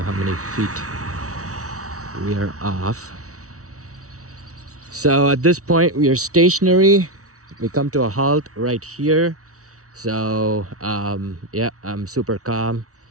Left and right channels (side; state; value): left; late; 0.65 ms